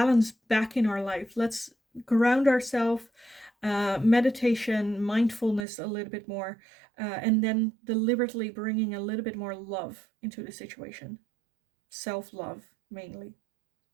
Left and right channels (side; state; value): left; drops out; at 5.7 s